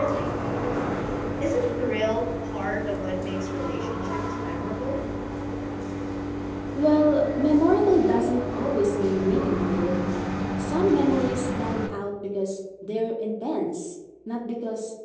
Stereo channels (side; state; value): both; identical; correlation 1.00